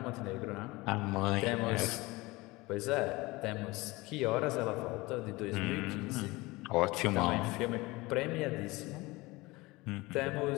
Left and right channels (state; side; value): quieter; right; 22.0 dB